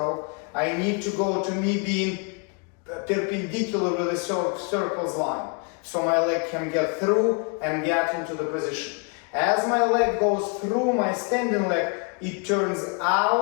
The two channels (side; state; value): right; quieter; 36.4 dB